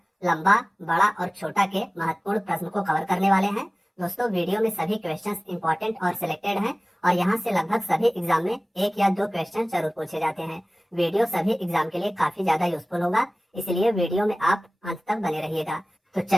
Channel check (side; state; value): both; normal; correlation 0.98